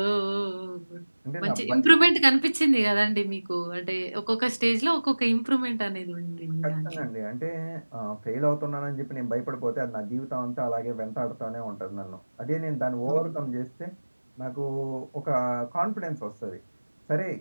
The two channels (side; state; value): both; inverted; correlation -1.00